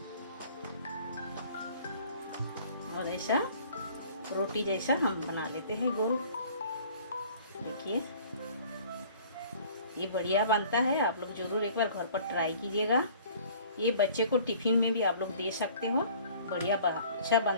और ऐसा रोटी जैसा हम बना लेते हैं गोल। देखिए ये बढ़िया बनता है। आप लोग ज़रूर एक बार घर पर ट्राई कीजिएगा। ये बच्चे को टिफ़िन में भी आप लोग दे सकते हो, बढ़िया अच्छा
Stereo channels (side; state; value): both; inverted; correlation -0.51